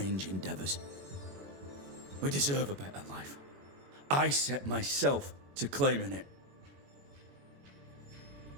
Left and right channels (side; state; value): left; late; 21 ms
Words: endeavors. We deserve a better life. I set myself to claiming it.